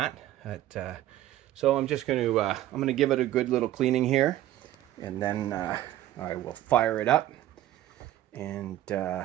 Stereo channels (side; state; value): left; quieter; 13.7 dB